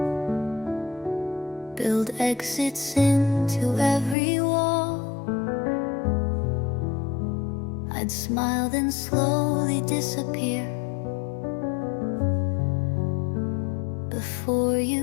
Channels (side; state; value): right; drops out; at 4.2 s